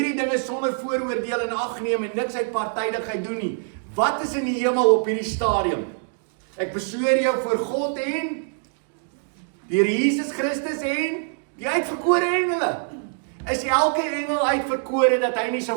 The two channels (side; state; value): left; silent; 62 dB below the other